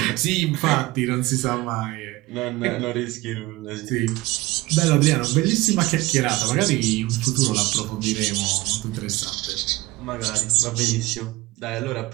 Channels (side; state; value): left; quieter; 20.0 dB